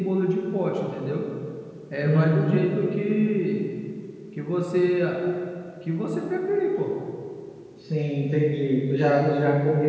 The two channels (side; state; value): both; identical; correlation 1.00